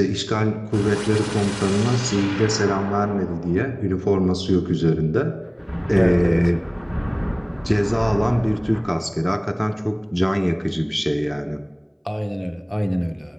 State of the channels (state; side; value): identical; both; correlation 1.00